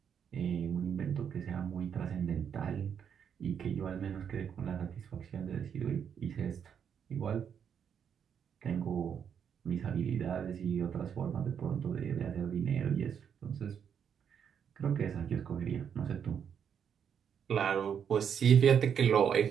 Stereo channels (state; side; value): quieter; left; 7.9 dB